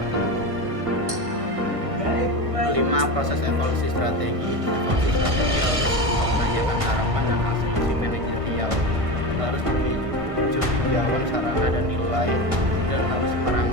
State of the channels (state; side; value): late; left; 1.5 ms